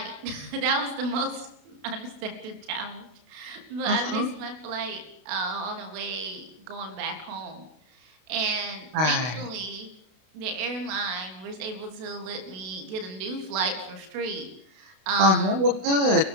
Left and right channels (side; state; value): left; late; 32 ms